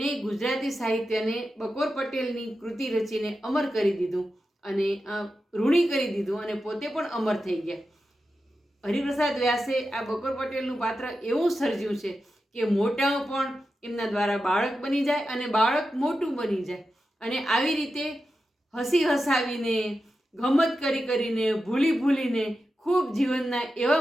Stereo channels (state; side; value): normal; both; correlation 0.91